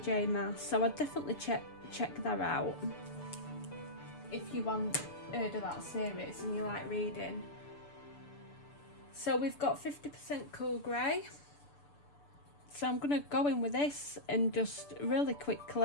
Maas, so I'd definitely check that out if you want heard of that series and you like reading. So we've got 50% cool grey, so I'm going to go in with this and just really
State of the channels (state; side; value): late; right; 6.8 ms